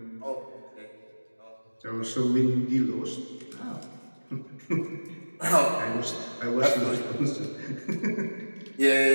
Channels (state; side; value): inverted; both; correlation -1.00